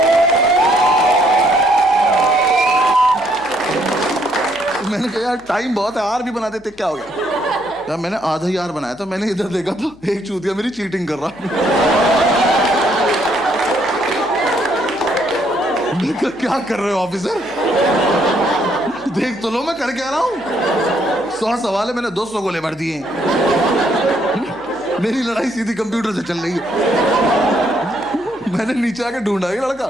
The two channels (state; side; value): noise; left; hum, 27 dB below the sound